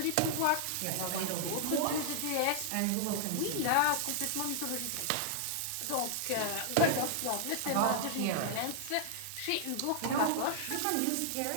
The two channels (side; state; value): both; different; correlation 0.00